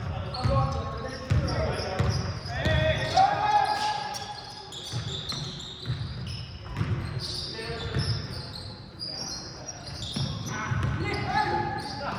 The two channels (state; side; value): identical; both; correlation 1.00